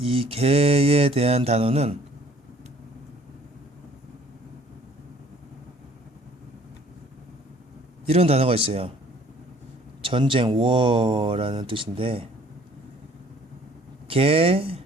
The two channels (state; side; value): normal; both; correlation 0.56